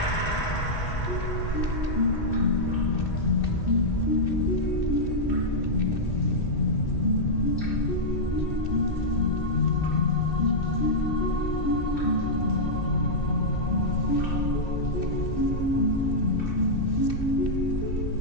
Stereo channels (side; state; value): right; late; 2.6 ms